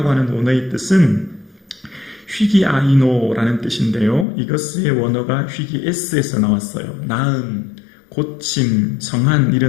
하는 원어의 뜻은 휘기아이노라는 뜻인데요. 이것의 원어가 휘기에스에서 나왔어요. 나음, 고침, 성한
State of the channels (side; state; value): right; drops out; at 4.2 s